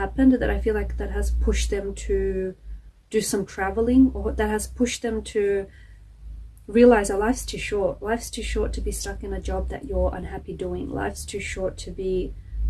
that I feel like that has pushed them to do some traveling, or that has pushed them to realize that life's too short. Life's too short to be stuck in a job that you're unhappy doing. Life's too short to be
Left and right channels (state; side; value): identical; both; correlation 1.00